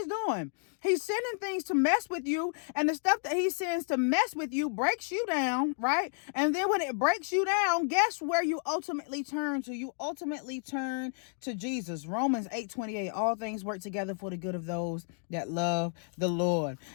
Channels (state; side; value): silent; right; 57 dB below the other